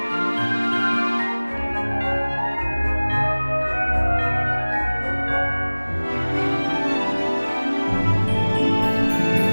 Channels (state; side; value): inverted; both; correlation -1.00